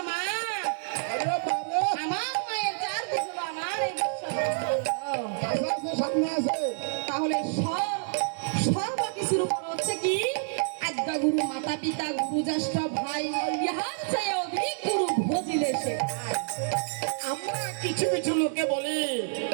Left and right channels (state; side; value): silent; left; 59 dB below the other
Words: মা, আমার মায়ের চারদিক হলো আমার এই বিশ্ব ব্রহ্মাণ্ড। তাহলে সর্বকিছুর উপর হচ্ছে কি আজ্ঞা গুরু, মাতা পিতা, গুরু জ্যেষ্ঠ ভাই, ইহার চেয়ে অধিক গুরু ভজিলে সে। আমরা কিছু কিছু লোকে বলি